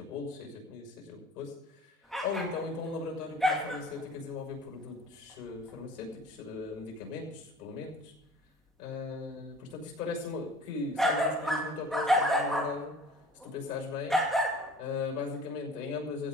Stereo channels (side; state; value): both; normal; correlation 0.45